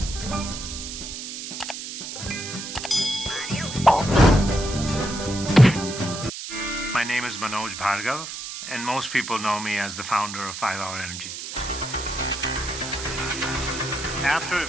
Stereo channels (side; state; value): right; noise; hiss, 8 dB below the sound